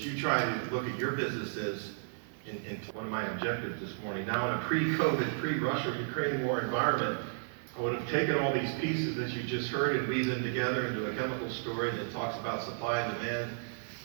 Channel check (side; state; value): left; silent; 56 dB below the other